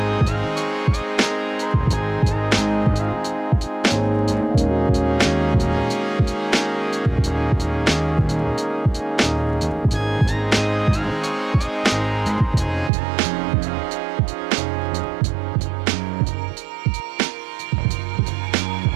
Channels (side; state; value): left; drops out; at 12.9 s